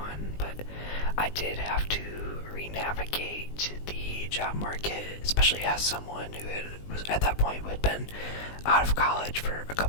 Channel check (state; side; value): late; right; 20 ms